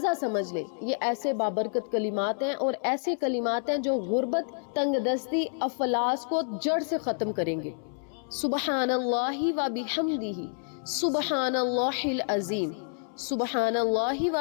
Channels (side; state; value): right; silent; 59 dB below the other